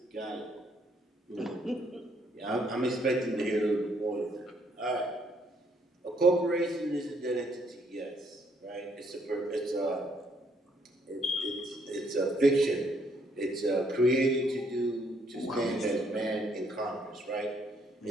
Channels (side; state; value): both; normal; correlation 0.69